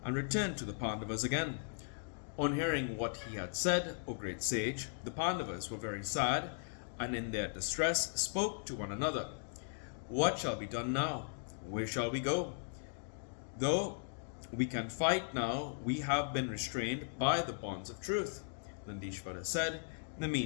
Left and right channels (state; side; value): silent; right; digital silence